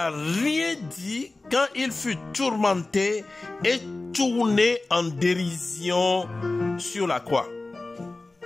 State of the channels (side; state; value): right; quieter; 3.2 dB